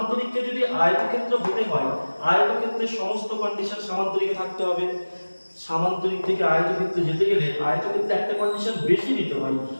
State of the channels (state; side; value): inverted; both; correlation -1.00